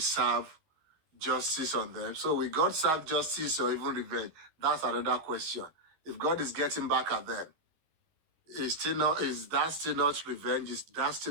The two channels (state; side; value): late; left; 13 ms